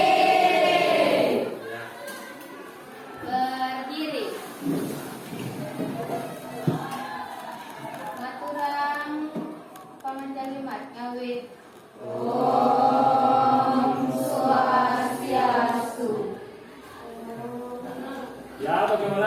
Berdiri. Maturang pamanjalimat ngawit. Om Swastiastu. Ya,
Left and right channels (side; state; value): both; identical; correlation 1.00